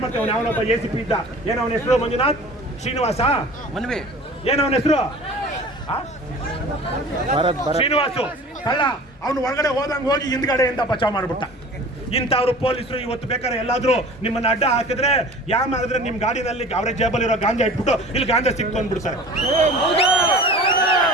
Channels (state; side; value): normal; both; correlation 0.42